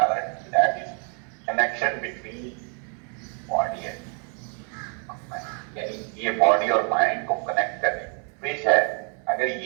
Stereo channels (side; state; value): left; quieter; 39.9 dB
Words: रहा है that is connection between body and, यानी ये बॉडी और माइंड को कनेक्ट करने विच है। अगर